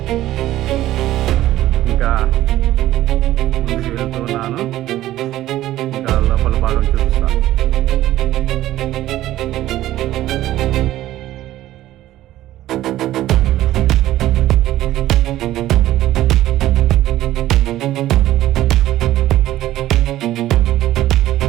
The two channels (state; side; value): quieter; left; 14.4 dB